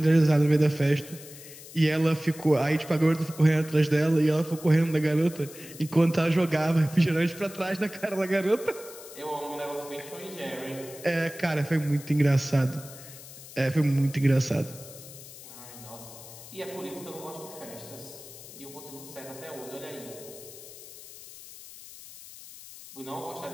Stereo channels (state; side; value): noise; left; hiss, 16 dB below the sound